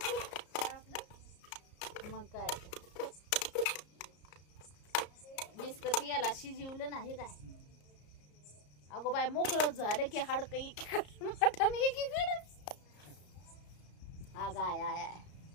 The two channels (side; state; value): right; late; 34 ms